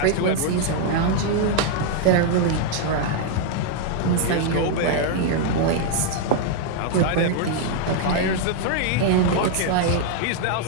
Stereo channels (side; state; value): both; different; correlation 0.00